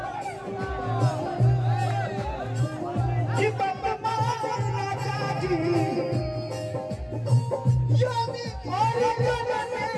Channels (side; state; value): both; identical; correlation 1.00